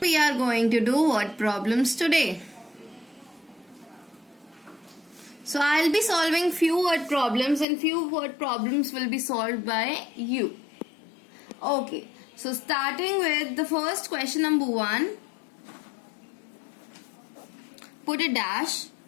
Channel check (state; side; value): drops out; right; at 7.7 s